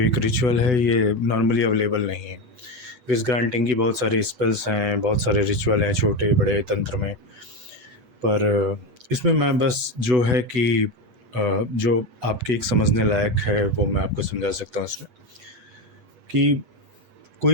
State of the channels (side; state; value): left; late; 8.5 ms